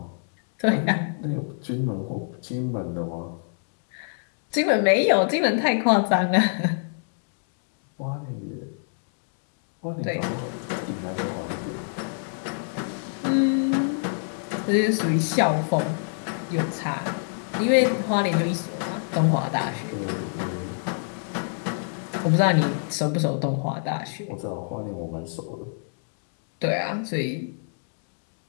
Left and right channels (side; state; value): right; silent; digital silence